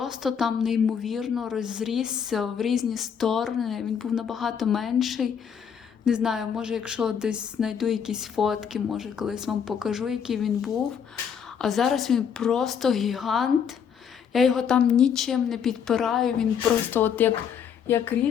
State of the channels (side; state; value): right; quieter; 7.6 dB